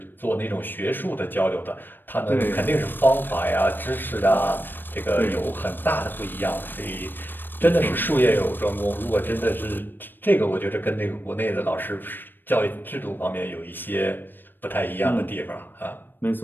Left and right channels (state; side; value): late; right; 0.094 ms